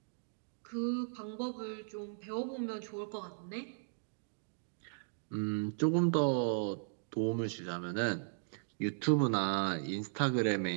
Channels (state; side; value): silent; left; digital silence